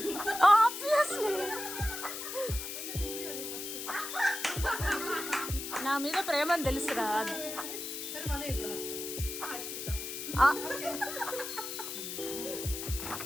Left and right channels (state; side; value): noise; left; hiss, 6 dB below the sound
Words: ఆబ్వియస్లీ. నా మీద ప్రేమని తెలుసురా. మరి మళ్ళీ ఎప్పుడు వస్తా?